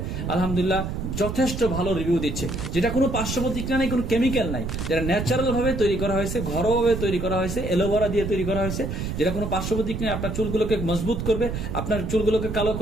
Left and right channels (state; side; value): noise; right; rumble, 4 dB below the sound